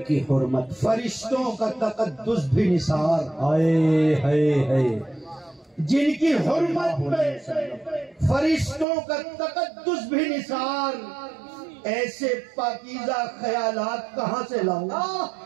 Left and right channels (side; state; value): left; drops out; at 8.8 s